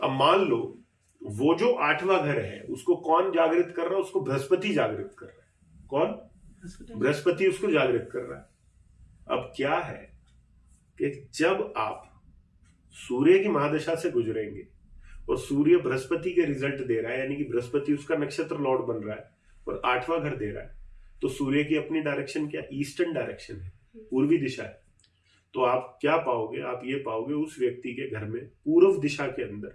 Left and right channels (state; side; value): identical; both; correlation 1.00